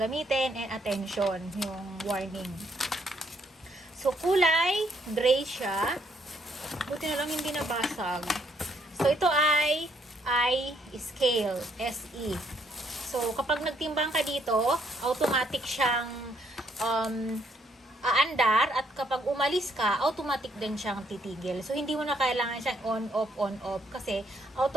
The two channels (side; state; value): both; normal; correlation 0.71